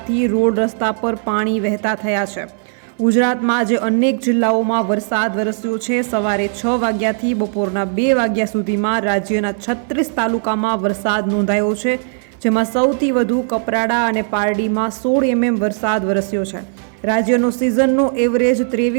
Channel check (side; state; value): left; silent; 67 dB below the other